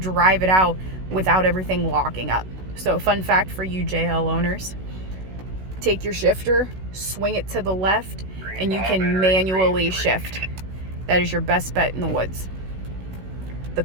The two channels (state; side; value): late; left; 16 ms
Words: it out without everything locking up. So fun fact for you JL owners, take your shifter, swing it to the left, and you can manually shift. That is your best bet in the woods. The